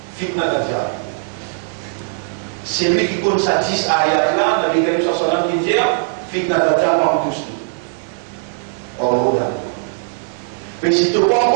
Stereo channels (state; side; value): silent; left; 67 dB below the other